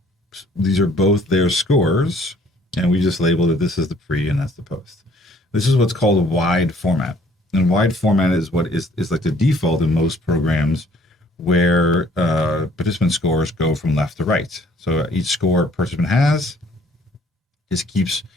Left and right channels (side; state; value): both; normal; correlation 0.59